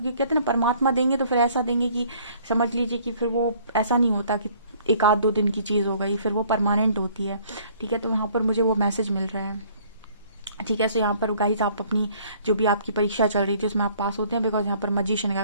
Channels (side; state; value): both; inverted; correlation -0.58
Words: कहते हैं ना परमात्मा देंगे तो फिर ऐसा देंगे कि समझ लीजिए कि फिर वो ऐसा नहीं होता कि एक आध दो दिन की चीज़ हो गई, फिर वो परमानेंट होती है, ठीक है। तो यहाँ पर मुझे वो मैसेज मिल रहा है, ठीक है। सो यहाँ पर गाइज आप अपनी जो भी आपकी परीक्षा चल रही थी उसमें आप पास होते हैं, बिकॉज यहाँ पर मजिशियन